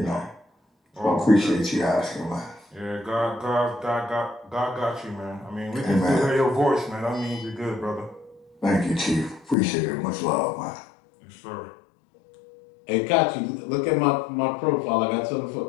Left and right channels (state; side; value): drops out; right; at 9.6 s